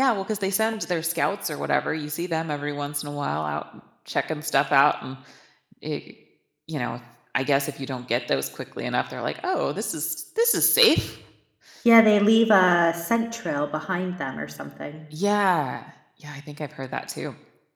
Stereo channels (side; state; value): both; identical; correlation 1.00